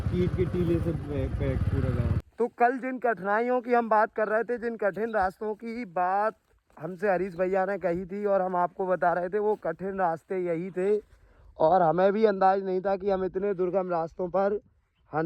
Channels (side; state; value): both; identical; correlation 1.00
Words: ईंट के टीले से पैक पूरा गाँव। तो कल जिन कठिनाइयों की हम बात कर रहे थे, जिन कठिन रास्तों की बात हमसे हरीश भैया ने कही थी और हम आपको बता रहे थे, वो कठिन रास्ते यही थे। और हमें भी अंदाज नहीं था कि हम इतने दुर्गम रास्तों पर